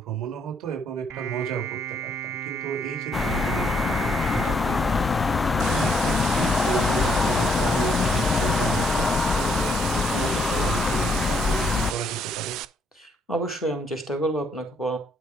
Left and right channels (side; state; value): both; normal; correlation 0.71